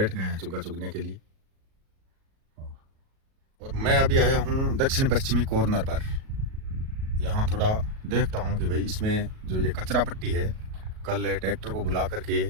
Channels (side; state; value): left; late; 37 ms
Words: गए हैं चुग्गा चुगने के लिए। और मैं अभी आया हूँ दक्षिण पश्चिमी कॉर्नर पर। यहाँ थोड़ा देखता हूँ कि भाई इसमें जो ये कचरा पट्टी है, कल ट्रैक्टर को बुला करके